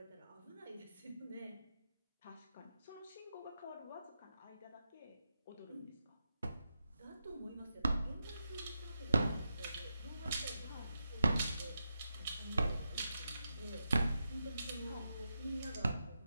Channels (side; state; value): both; inverted; correlation -0.87